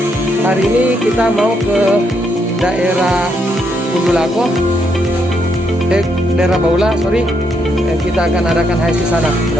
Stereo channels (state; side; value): normal; both; correlation 0.77